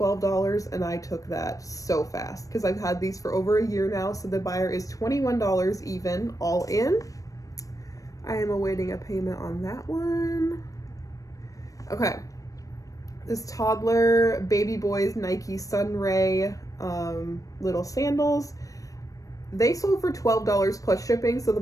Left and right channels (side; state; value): right; late; 0.16 ms